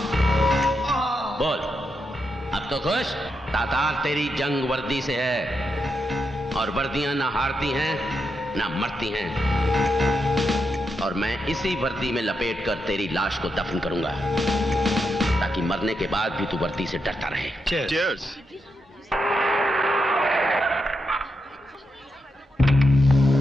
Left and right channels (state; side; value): normal; both; correlation 0.84